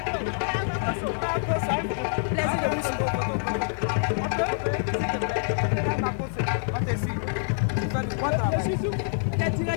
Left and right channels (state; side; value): silent; right; digital silence